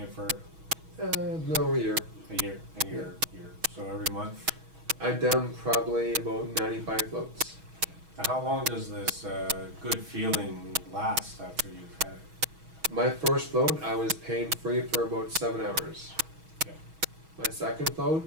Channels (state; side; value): late; left; 6.2 ms